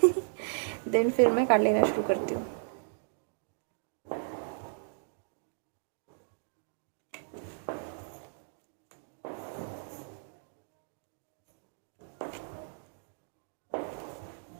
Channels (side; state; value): left; silent; digital silence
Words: देन फिर मैं कार्ड लेना शुरू करती हूँ।